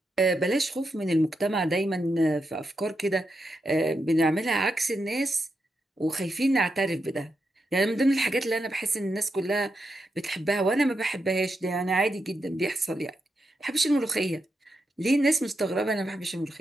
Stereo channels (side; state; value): both; normal; correlation 0.85